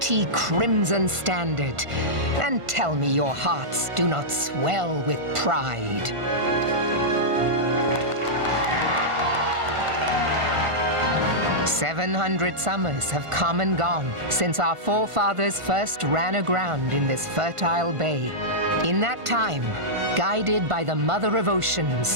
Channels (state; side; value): late; left; 1.5 ms